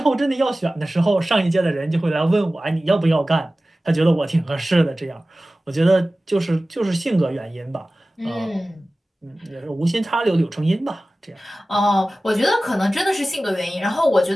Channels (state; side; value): normal; both; correlation 0.96